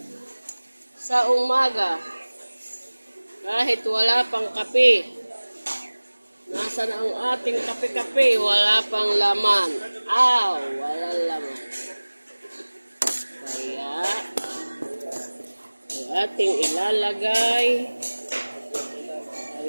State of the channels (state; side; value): inverted; both; correlation -1.00